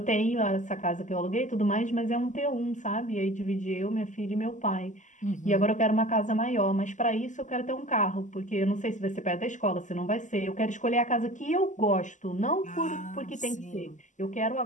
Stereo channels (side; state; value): right; late; 0.36 ms